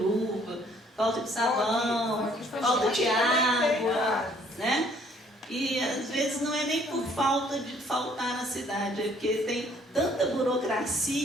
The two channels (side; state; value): both; normal; correlation 0.61